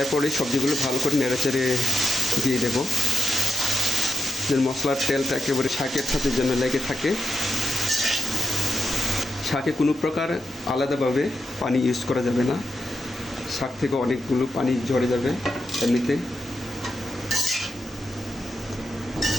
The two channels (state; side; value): normal; both; correlation 0.86